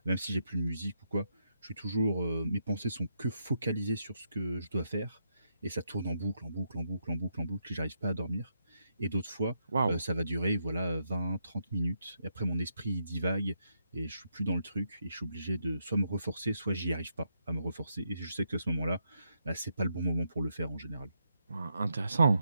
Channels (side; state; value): both; inverted; correlation -0.81